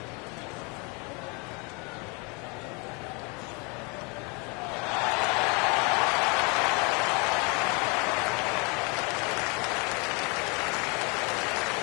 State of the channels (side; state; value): right; quieter; 30.9 dB